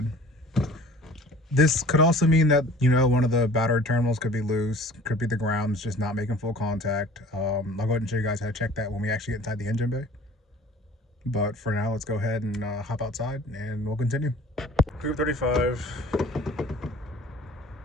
This could also mean that, one of the battery terminals could be loose, could be the ground's just not making full contact. I'll go ahead and show you guys how to check that when we actually get inside the engine bay. But for now, let's go ahead and hop outside and we'll continue. Group 35.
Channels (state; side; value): normal; both; correlation 0.47